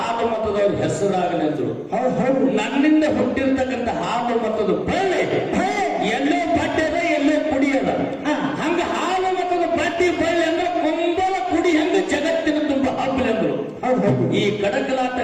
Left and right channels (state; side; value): identical; both; correlation 1.00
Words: ಮತದವ್ರ ಹೆಸರಾಗಲೆಂದ್ರು. ನನ್ನಿಂದ ಹುಟ್ಟಿರ್ತಕ್ಕಂಥ ಹಾಲು ಮತದ ಬಳ್ಳಿ ಎಲ್ಲೋ ಬಡ್ಡದ ಎಲ್ಲೋ ಕುಡಿಯದ. ಹಂಗ ಹಾಲು ಮತದ ಬಡ್ಡಿ ಬಳ್ಳಿ ಅಂದ್ರೆ ಕುಂಬಲ ಕುಡಿ ಹೆಂಗ ಜಗತ್ತಿನ ತುಂಬ ಹಬ್ಬಲೆಂದ್ರು. ಈ ಕಡಕಲಾಟ